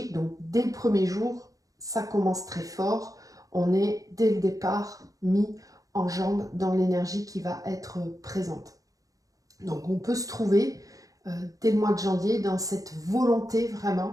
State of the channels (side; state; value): left; late; 0.17 ms